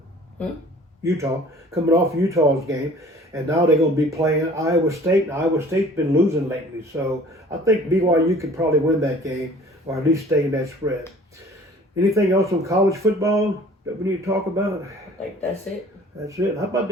Utah. Coming off Utah's game, and now they're going to be playing Iowa State. And Iowa State's been losing lately, so I think BYU could probably win that game, or at least stay in that spread. Anything else on college football that we need to talk about? I think that's it. That's it. How about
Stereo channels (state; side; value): normal; both; correlation 0.49